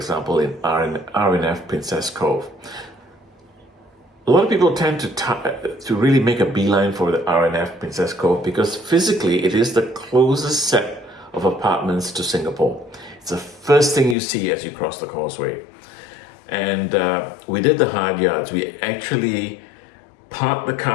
in RNF Princess Cove. A lot of people tend to really make a beeline for the RNF Princess Cove because physically it is the closest set of apartments to Singapore. It's the first thing you see as you cross the causeway. And we did the hard yards. We actually parked the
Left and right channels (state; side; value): drops out; right; at 14.2 s